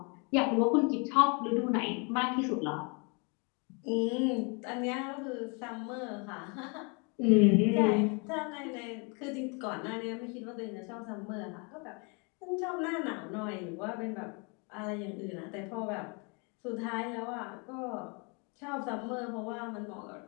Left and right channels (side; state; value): right; quieter; 33.3 dB